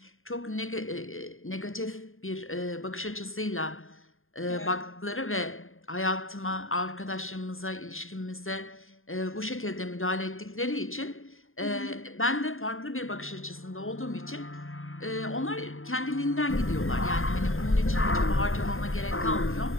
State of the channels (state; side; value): late; right; 0.60 ms